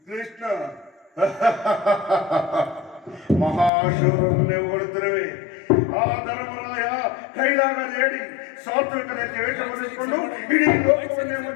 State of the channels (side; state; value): right; drops out; at 3.7 s